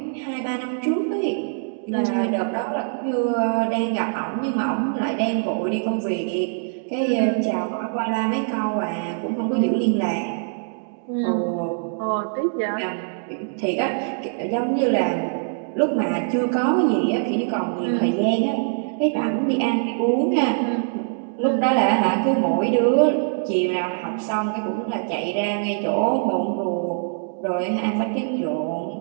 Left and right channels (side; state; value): left; silent; 63 dB below the other